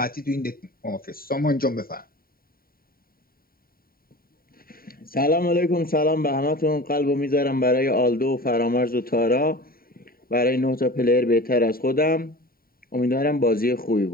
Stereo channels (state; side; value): late; right; 0.43 ms